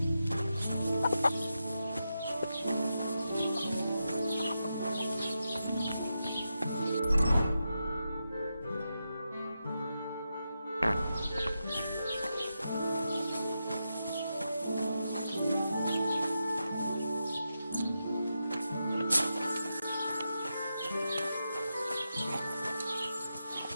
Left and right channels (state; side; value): inverted; both; correlation -0.88